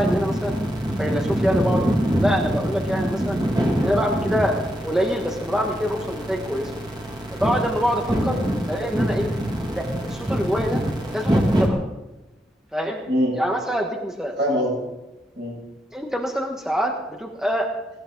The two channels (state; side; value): normal; both; correlation 0.81